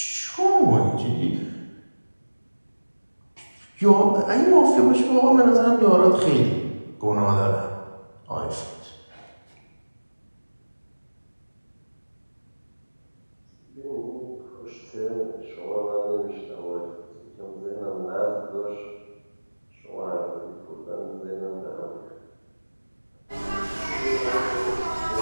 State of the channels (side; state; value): both; inverted; correlation -1.00